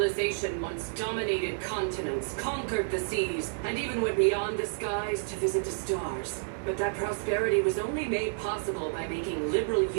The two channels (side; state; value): left; silent; digital silence